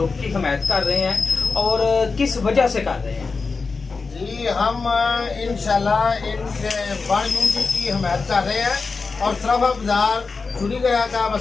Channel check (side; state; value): right; quieter; 4.4 dB